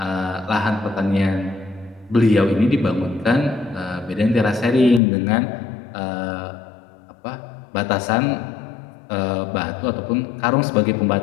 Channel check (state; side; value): drops out; right; at 5.0 s